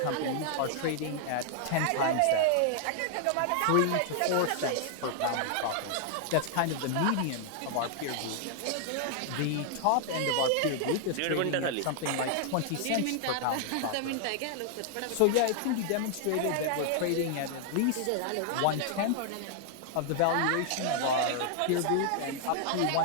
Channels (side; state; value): both; different; correlation 0.00